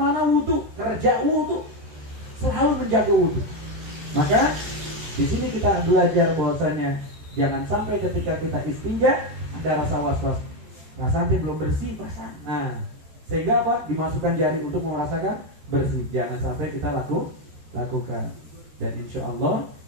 wudu, kerja wudu, selalu menjaga wudu. Maka di sini kita belajar bahwasanya jangan sampai ketika kita istinja ada rasa was-was, rasanya belum bersih, perasaan. Nah, sehingga apa? Dimasukkan jari untuk merasakan bersih. Jangan sampai kita lakukan. Dan insya Allah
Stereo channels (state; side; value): late; left; 14 ms